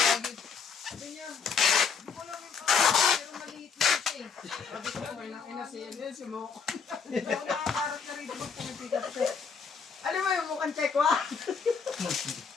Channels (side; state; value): right; quieter; 5.9 dB